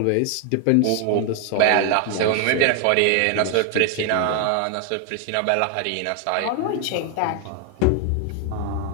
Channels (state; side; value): different; both; correlation 0.01